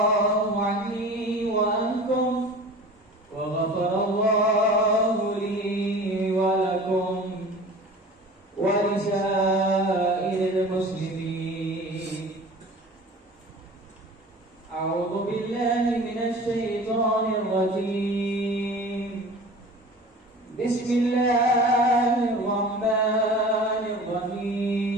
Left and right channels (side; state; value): both; normal; correlation 0.40